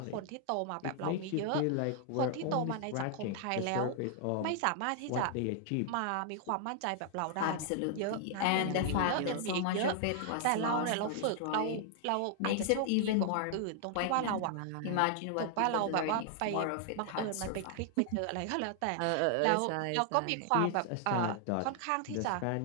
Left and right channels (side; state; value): both; different; correlation 0.00